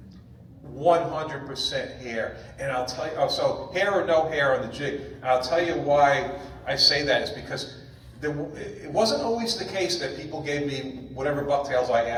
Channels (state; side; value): identical; both; correlation 1.00